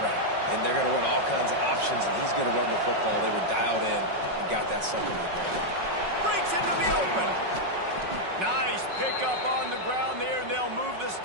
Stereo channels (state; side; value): late; left; 5.4 ms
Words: and they're going to run all kinds of options, and he's going to run the football. They were dialed in and got that sucker to the ground. Breaks into the open. Nice pickup on the ground there, and they'll move the